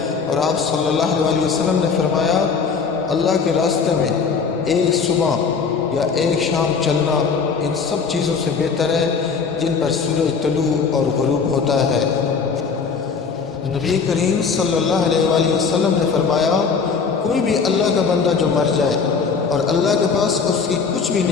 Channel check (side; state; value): right; quieter; 5.5 dB